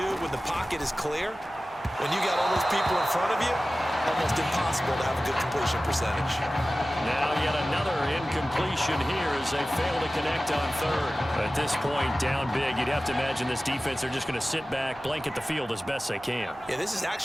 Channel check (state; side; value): noise; right; hum, 26 dB below the sound